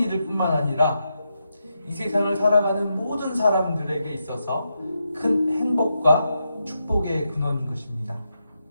뿐만 아니라 이 세상을 살아가는 모든 사람들에게 있어서 큰 행복과 축복의 근원인 것입니다.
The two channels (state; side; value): inverted; both; correlation -0.85